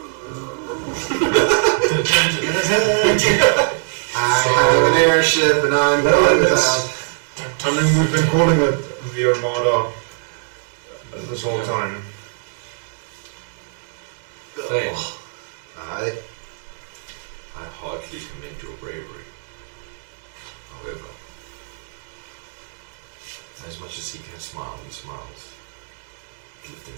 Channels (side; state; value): left; silent; digital silence